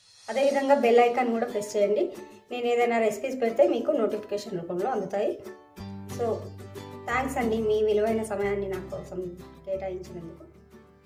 అదేవిధంగా బెల్ ఐకాన్ కూడా ప్రెస్ చేయండి. నేను ఏదైనా రెసిపీస్ పెడితే మీకు నోటిఫికేషన్ రూపంలో అందుతాయి. సో థ్యాంక్స్ అండి, మీ విలువైన సమయాన్ని నా కోసం కేటాయించినందుకు.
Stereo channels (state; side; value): identical; both; correlation 1.00